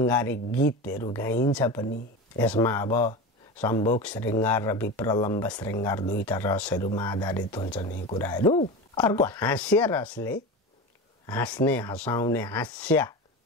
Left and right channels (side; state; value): both; normal; correlation 0.26